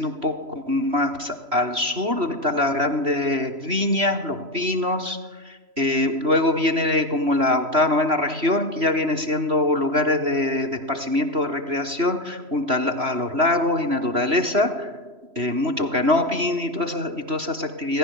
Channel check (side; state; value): left; late; 3.0 ms